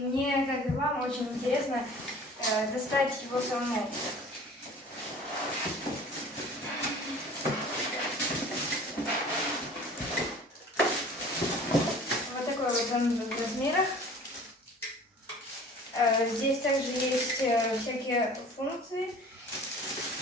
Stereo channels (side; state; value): both; normal; correlation 0.46